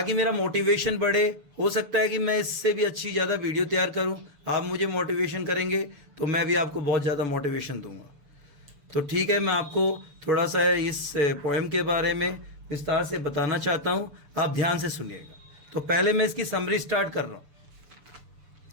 मेरा मोटिवेशन बढ़े। हो सकता है कि मैं इससे भी अच्छी ज़्यादा वीडियो तैयार करूं। आप मुझे मोटिवेशन करेंगे तो मैं भी आपको बहुत ज़्यादा मोटिवेशन दूंगा। तो ठीक है, मैं आपको थोड़ा सा इस पोएम के बारे में विस्तार से बताना चाहता हूं, आप ध्यान से सुनिएगा। तो पहले मैं इसकी समरी स्टार्ट कर रहा हूं।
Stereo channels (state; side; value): late; left; 6.9 ms